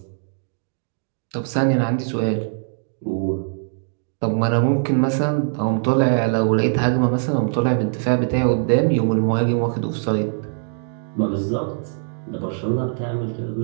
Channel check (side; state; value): left; silent; digital silence